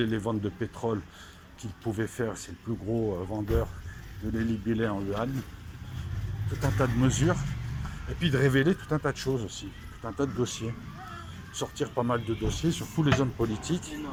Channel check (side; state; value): both; identical; correlation 1.00